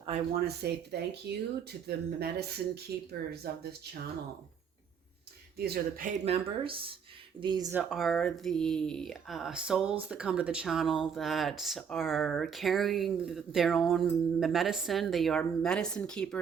I want to say thank you to the medicine keepers of this channel. These are the paid members. These are the souls that come to the channel that are carrying their own medicine. They are medicine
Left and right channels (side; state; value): left; quieter; 7.1 dB